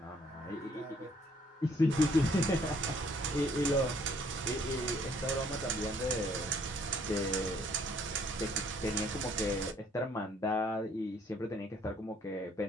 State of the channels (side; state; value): both; normal; correlation 0.63